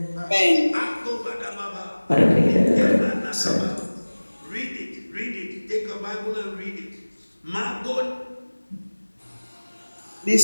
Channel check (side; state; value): both; inverted; correlation -1.00